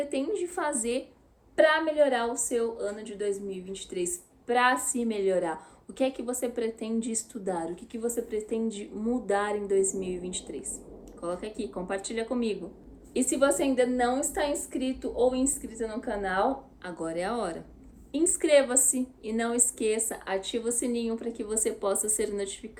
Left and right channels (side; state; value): both; identical; correlation 1.00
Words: fazer para melhorar o seu ano de 2023, para se melhorar. O que é que você pretende estudar? O que você pretende mudar em 2023? Coloca aqui, compartilha comigo. E se você ainda não está inscrito ou inscrita no canal, agora é a hora. Inscreva-se e não esqueça, ativa o sininho para que você possa ser